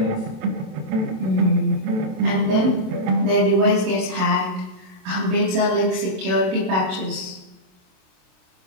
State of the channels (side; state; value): left; late; 27 ms